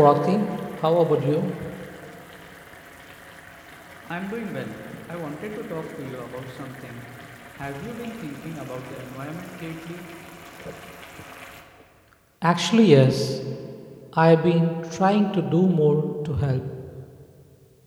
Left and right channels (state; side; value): identical; both; correlation 1.00